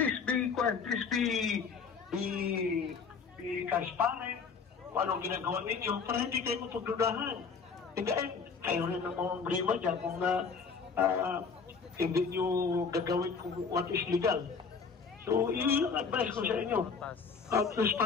be transparent kung anong ginagawa ninyo para hindi kayo mapagdudahan. Hindi kayo rin ang mga brima dyan kung hindi nyo gagawin kung what is legal. So yung advice ko sa inyo,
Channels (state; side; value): quieter; right; 5.5 dB